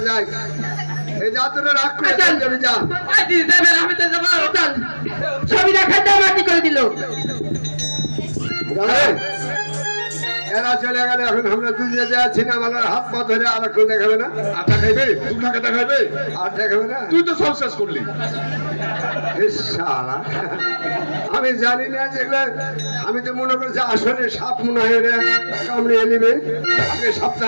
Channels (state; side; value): inverted; both; correlation -1.00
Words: যায়। এই যা তোরা রাগ করে যাবে, যা। আমি তো যাবো। চল, ছবি দেখাতে মাটি করে দিল। এরা চলে গেলে এখন আমরা দুজনে যাচ্ছি না, আমার হাত পা ধরে আর কেউ দেখাবে না। আটা খাইবে, তুমি টাকা দেখাবে, আর দেখাবে না। তুই তো সব শেষ করলি। ইস শালা, আমি জানি না যেগুলো, আমি তো মনে করছি আসলে সাপ মনে হয় রে কামড়ে নিবে, আগে